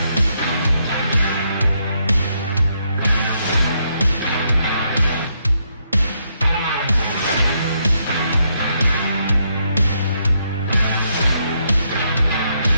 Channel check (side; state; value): both; inverted; correlation -0.76